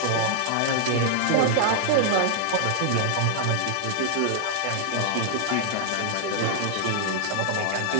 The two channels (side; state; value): both; different; correlation -0.01